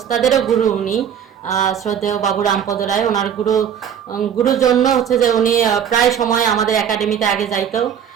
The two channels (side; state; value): left; quieter; 8.6 dB